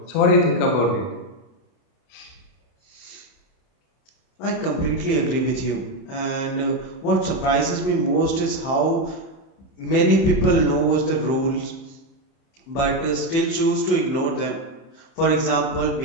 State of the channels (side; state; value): right; late; 30 ms